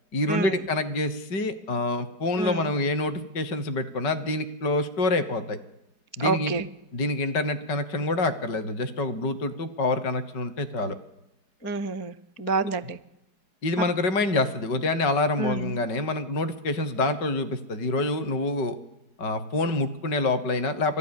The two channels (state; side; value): late; right; 4.8 ms